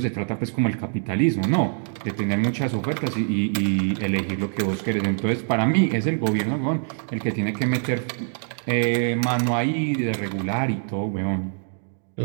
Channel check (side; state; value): left; silent; 62 dB below the other